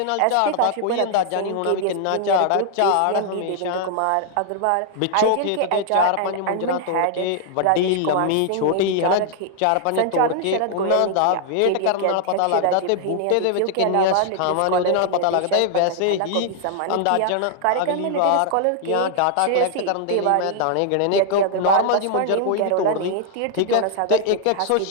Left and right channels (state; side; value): different; both; correlation -0.01